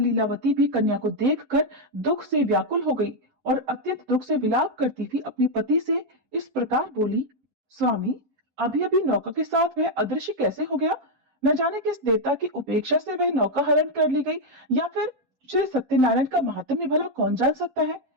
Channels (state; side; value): late; left; 11 ms